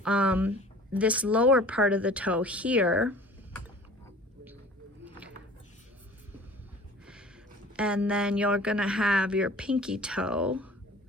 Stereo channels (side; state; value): both; normal; correlation 0.46